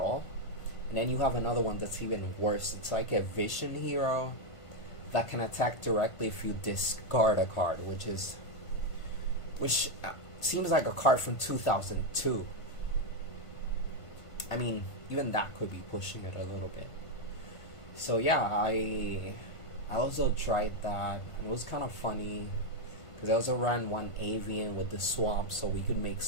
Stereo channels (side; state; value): right; late; 1.5 ms